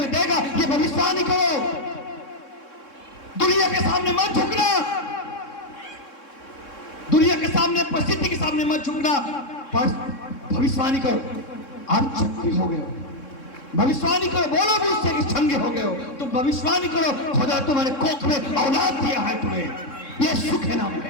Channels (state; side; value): late; right; 3.6 ms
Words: देगा। ये भविष्यवाणी करो, दुनिया के सामने मत झुकना, दुनिया के सामने परिस्थिति के सामने मत झुकना, भविष्यवाणी करो आप चंगे हो गए हो। भविष्यवाणी करो, बोलो भी उससे कि चंगे हो गए हो। तुम भविष्यवाणी करो खुदा तुम्हारे कोख में औलाद दिया है तुम्हें, यीशु के नाम